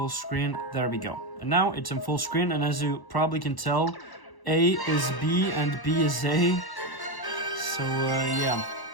screen. There we go. And now it's in full screen, and as you probably can tell, A is B and B is A. So yeah,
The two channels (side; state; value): right; late; 1.1 ms